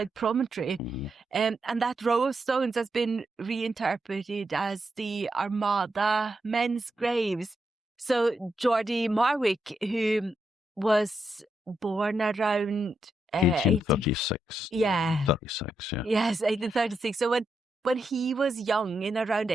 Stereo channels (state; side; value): normal; both; correlation 0.83